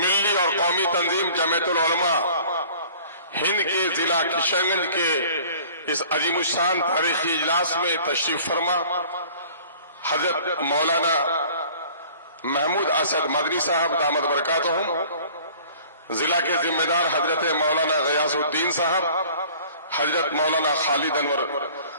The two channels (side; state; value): both; inverted; correlation -0.49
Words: اور قومی تنظیم جمعیت العلماء ہند کے ضلع کشن گنج کے اس عظیم الشان تاریخی اجلاس میں تشریف فرما حضرت مولانا محمود اسد مدنی صاحب دامت برکاتہم، ضلع کے ذمہ دار حضرت مولانا غیاث الدین صاحب، حضرت مولانا خالد انور